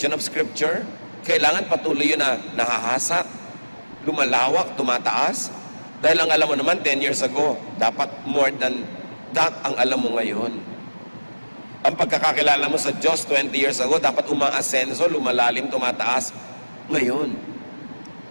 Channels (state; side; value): inverted; both; correlation -1.00